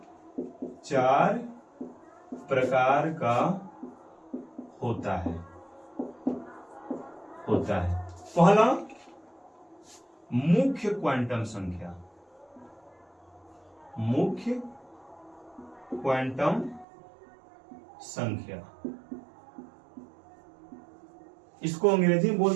4 प्रकार का होता है। पहला, मुख्य क्वांटम संख्या। मुख्य क्वांटम संख्या, इसको अंग्रेजी में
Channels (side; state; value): left; drops out; at 16.9 s